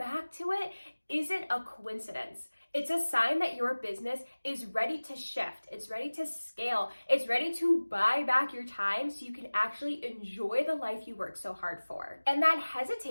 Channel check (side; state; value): both; inverted; correlation -1.00